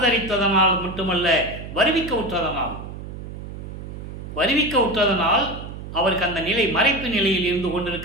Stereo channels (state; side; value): noise; right; hum, 10 dB below the sound